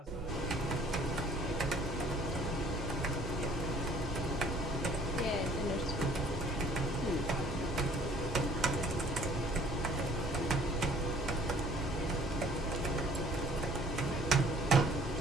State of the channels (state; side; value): normal; both; correlation 0.55